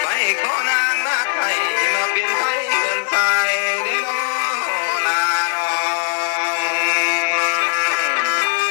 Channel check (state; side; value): silent; right; digital silence